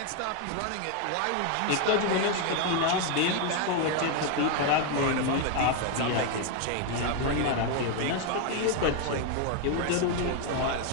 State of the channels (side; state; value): both; different; correlation 0.01